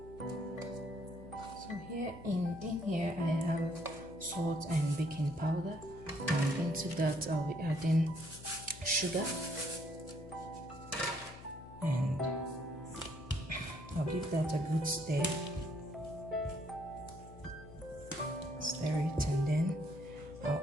In here I have salt and baking powder, and into that I'll be adding sugar, and I'll give that a good stir it, and then I'll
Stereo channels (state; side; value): noise; left; hum, 16 dB below the sound